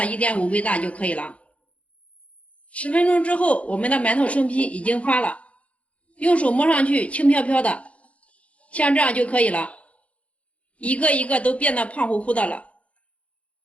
1.5倍大就可以了。10分钟之后，我们的馒头生坯已经发了，用手摸上去轻飘飘的，像这样就可以了，一个一个都变得胖乎乎的了。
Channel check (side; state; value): right; late; 0.064 ms